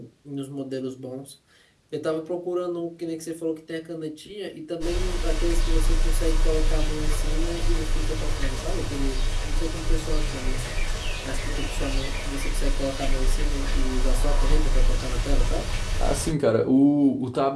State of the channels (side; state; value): both; identical; correlation 1.00